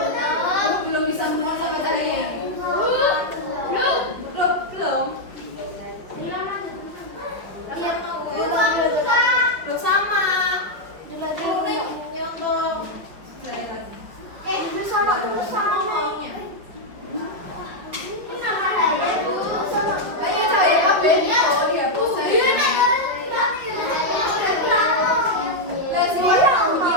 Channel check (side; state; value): left; late; 5.6 ms